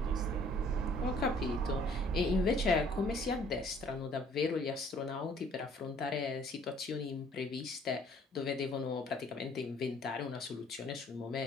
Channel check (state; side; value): normal; both; correlation 0.58